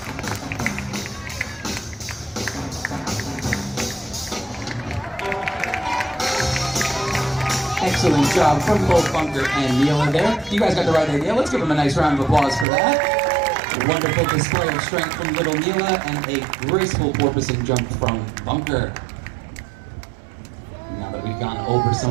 Excellent job from both Bunker and Neela there. You guys got the right idea. Let's give them a nice round of applause for that. A wonderful display of strength from little Neela and a graceful porpoising jump from Bunker. Now that we've gone over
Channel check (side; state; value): left; drops out; at 12.7 s